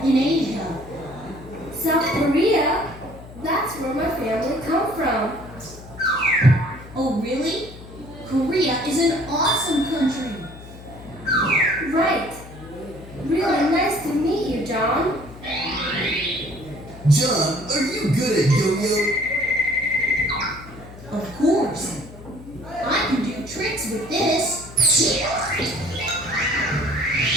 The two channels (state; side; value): noise; left; hum, 17 dB below the sound